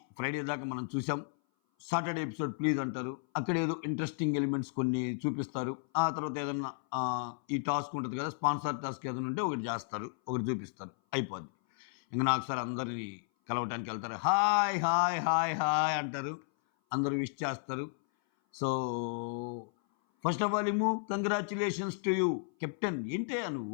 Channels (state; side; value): silent; right; 56 dB below the other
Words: ఫ్రైడే దాకా మనం చూసాం. సాటర్డే ఎపిసోడ్ ప్లీజ్ అంటారు. అక్కడ ఏదో ఇంట్రెస్టింగ్ ఎలిమెంట్స్ కొన్ని చూపిస్తారు. ఆ తర్వాత ఏదన్నా ఈ టాస్క్ ఉంటుంది కదా, స్పాన్సర్ టాస్క్ ఏదైనా ఉంటే ఒకటి చేస్తారు, ఒకటి చూపిస్తారు, అయిపోద్ది. ఇంక నాకు సార్ అందరినీ కలవటానికి వెళ్తారు. హాయ్ హాయ్ హాయ్ హాయ్ అంటారు, అందరూ విష్ చేస్తారు. So first of all congratulations to you captain. ఏంటే